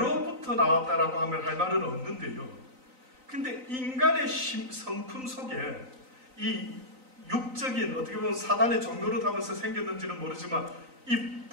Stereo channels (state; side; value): late; left; 3.9 ms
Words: 나왔다라고 하면 할 말은 없는데요. 근데 인간의 성품 속에 이 육적인, 어떻게 보면 사단의 종로를 하면서 생겼는지는 모르지만 이